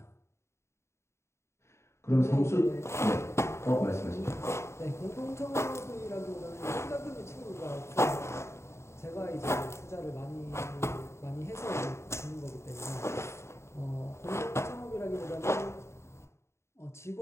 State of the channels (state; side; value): late; right; 0.13 ms